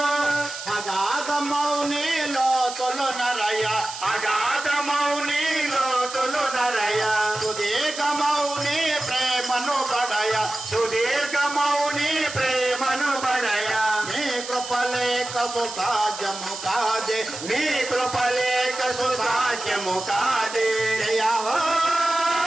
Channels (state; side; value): noise; right; hiss, 10 dB below the sound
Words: అగాధమౌని లోతులు నరయ అగాధమౌని లోతులు నరయ సుదీర్ఘమౌని ప్రేమను బడయ సుదీర్ఘమౌని ప్రేమను బడయ నీ కృపలేక సుసాధ్యము కాదే నీ కృపలేక సుసాధ్యము కాదే జయ హో